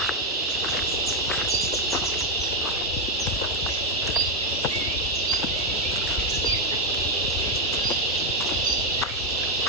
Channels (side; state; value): both; normal; correlation 0.03